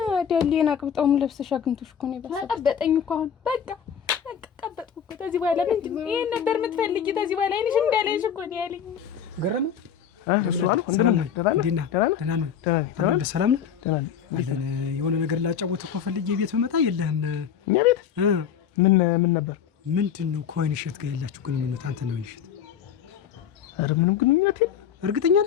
ዳሌን አቅብጣውም ለብሰሽ አግኝቶሽ እኮ ነው ይበሳል። ቀበጠኝ እኮ አሁን በቃ ቀበጥኩ እኮ። ከዚህ በኋላ ምንድን ነው ይሄን ነበር የምትፈልጊ? ከዚህ በኋላ አይንሽ እንዳለሽ እኮ ነው ያለኝ። ገረመ የሆነ ነገር ላጫወት እኮ ፈልጌ ቤት ብመጣ የለህም። እኛ ቤት ምን ነበር? ምንድን ነው ከወይን እሸት ጋር ያላችሁ ግንኙነት? አንተ ነው እሸት? ኧረ ምንም ግንኙነት የለም። እርግጠኛ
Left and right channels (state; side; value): quieter; right; 8.2 dB